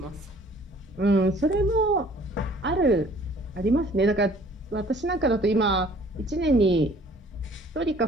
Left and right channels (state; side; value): normal; both; correlation 0.55